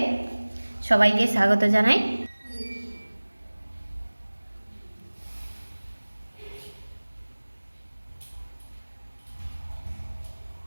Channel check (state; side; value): inverted; both; correlation -1.00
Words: সবাইকে স্বাগত জানাই।